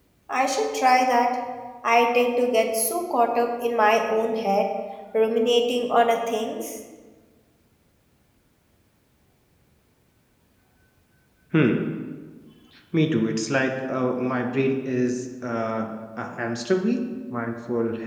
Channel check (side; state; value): both; identical; correlation 1.00